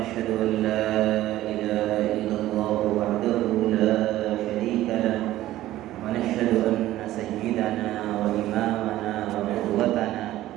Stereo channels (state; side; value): quieter; left; 14.9 dB